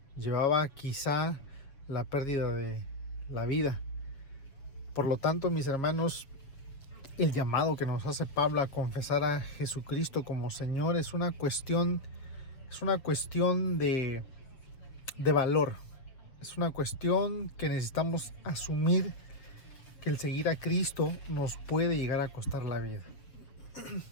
Llevaba quizá la pérdida de la vida. Por lo tanto, mis hermanos, el llamado que nos hace Pablo a confesar a Jesucristo como Señor es una cuestión de valor. Es una cuestión que necesitamos asumir, que el seguir a Cristo nos puede llegar a costar la vida.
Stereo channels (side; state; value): right; late; 7.5 ms